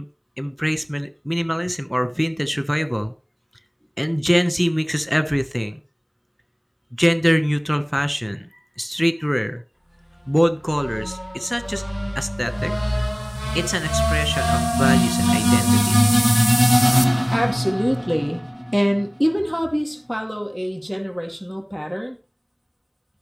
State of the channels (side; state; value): both; identical; correlation 1.00